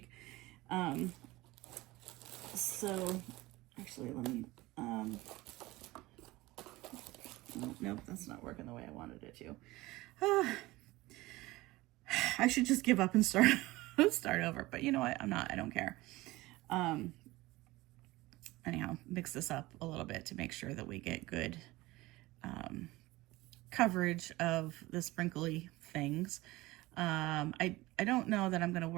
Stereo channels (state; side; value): quieter; left; 19.7 dB